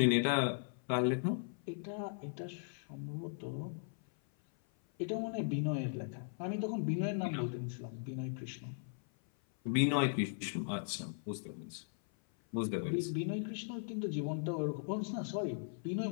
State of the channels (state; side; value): silent; right; 52 dB below the other